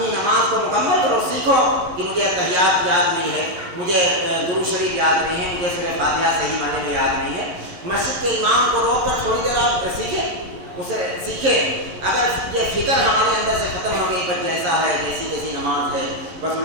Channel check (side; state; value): left; late; 11 ms